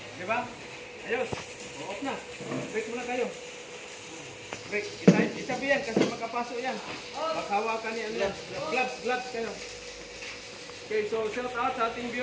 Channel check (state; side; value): identical; both; correlation 1.00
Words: Di ba? Ayos. Off na. Break muna kayo. Break. Isabi yan kasi makapasok yan. Maghawakan yan. Gloves kayo. Okay, so shout out sa ating